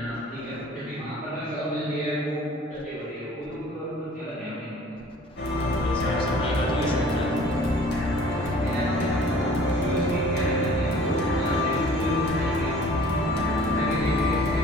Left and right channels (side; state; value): both; normal; correlation 0.50